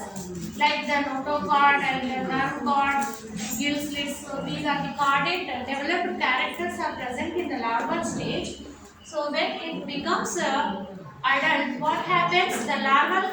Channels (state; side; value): identical; both; correlation 1.00